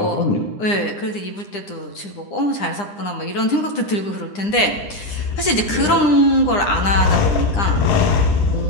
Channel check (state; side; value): late; right; 9.9 ms